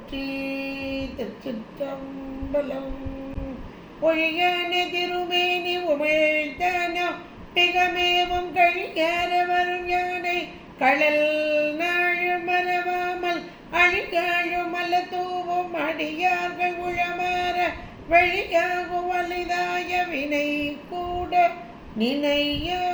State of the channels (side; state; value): both; identical; correlation 1.00